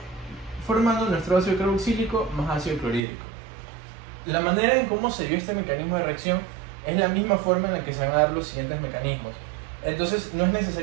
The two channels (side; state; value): left; drops out; at 3.0 s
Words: formando nuestro ácido carboxílico más ácido clorhídrico. La manera en cómo se dio este mecanismo de reacción es la misma forma en la que se van a dar los siguientes mecanismos. Entonces no es